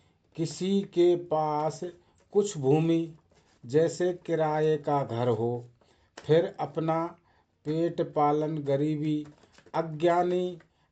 किसी के पास कुछ भूमि। जैसे किराए का घर हो, फिर अपना पेट पालन गरीबी। अज्ञानी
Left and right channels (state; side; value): identical; both; correlation 1.00